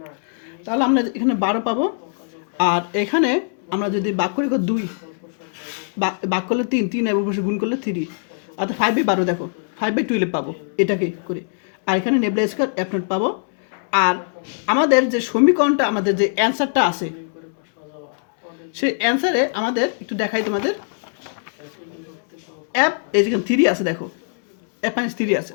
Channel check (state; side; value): silent; right; digital silence